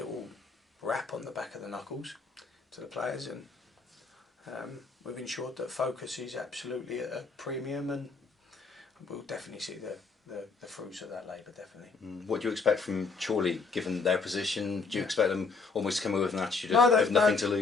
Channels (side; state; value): right; quieter; 4.4 dB